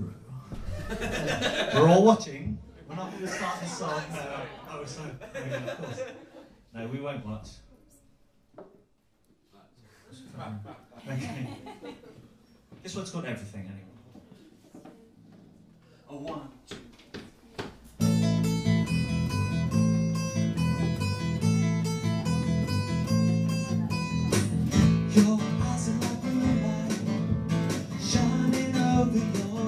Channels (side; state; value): both; identical; correlation 1.00